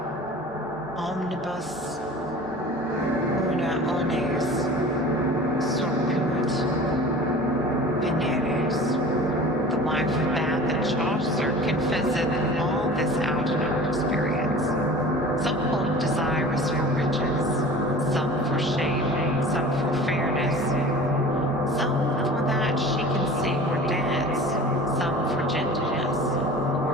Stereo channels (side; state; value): both; normal; correlation 0.40